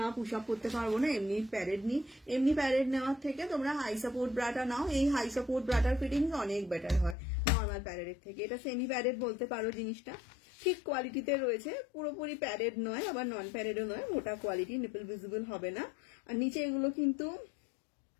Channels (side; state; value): right; drops out; at 7.2 s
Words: পুশ আপ করতে পারবো না, এমনি প্যাডেড নি, এমনি প্যাডেড নেওয়ার থেকে তোমরা হাই সাপোর্ট ব্রাটা নাও। এই হাই সাপোর্ট ব্রাটার ফিটিংস অনেক বেটার হয় নর্মাল প্যাডেডের থেকে। এটা সেমি প্যাডেড বলতে পারো, জিনিসটা ঠিক কোয়ালিটিতে রয়েছে, পুরোপুরি প্যাডেড নয় আবার নন প্যাডেডও নয়, মোটা কোয়ালিটি, নিপল ভিজিবল হবে না। আর নিচে এগুলো